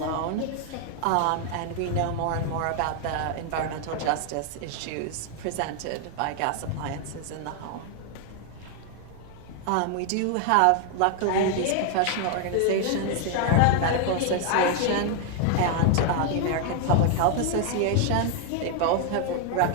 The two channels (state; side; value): different; both; correlation 0.00